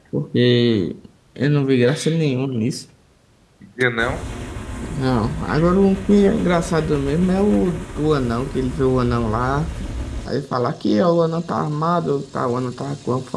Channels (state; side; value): identical; both; correlation 1.00